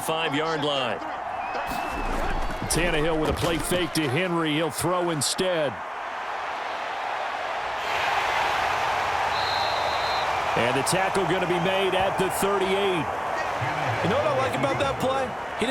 line. Tannehill with a play fake to Henry. He'll throw instead. And the tackle going to be made at the 38. You know what I like about that play? He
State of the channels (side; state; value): both; identical; correlation 1.00